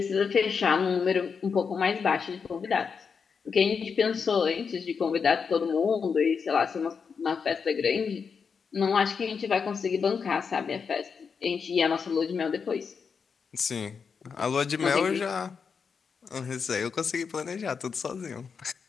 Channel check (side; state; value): right; quieter; 5.9 dB